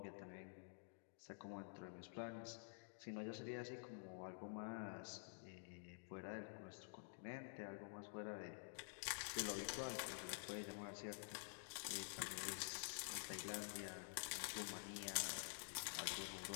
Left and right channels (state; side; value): silent; right; digital silence